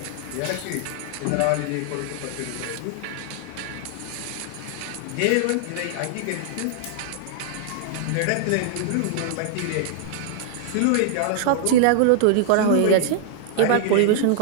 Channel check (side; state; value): both; different; correlation -0.01